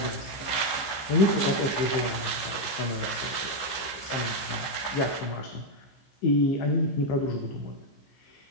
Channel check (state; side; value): late; right; 14 ms